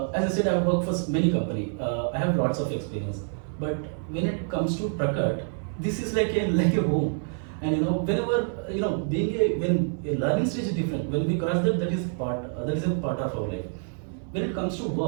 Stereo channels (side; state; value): left; silent; 60 dB below the other